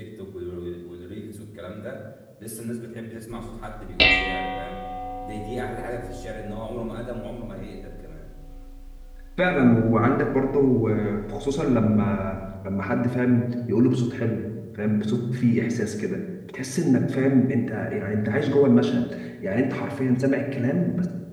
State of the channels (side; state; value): both; identical; correlation 1.00